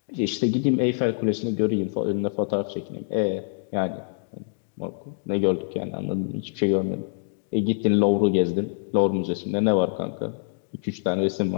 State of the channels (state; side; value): silent; right; digital silence